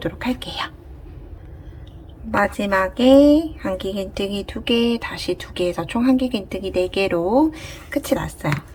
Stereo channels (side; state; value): both; identical; correlation 1.00